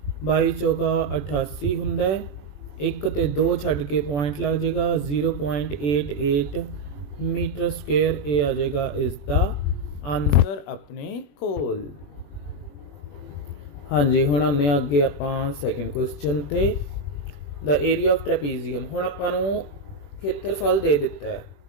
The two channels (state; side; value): late; right; 21 ms